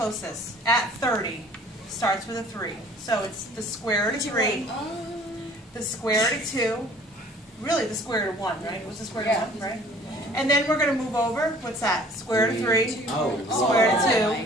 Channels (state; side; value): normal; both; correlation 0.53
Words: at 30, starts with a 3. So it's the square root of 3, the square root of 2, really the square root of 1, right? It was the square root of 1, right? And then we're going to move over. What's that? Square root of 3, square root of